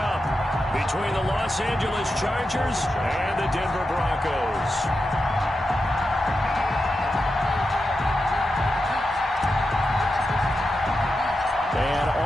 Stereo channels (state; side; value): normal; both; correlation 0.89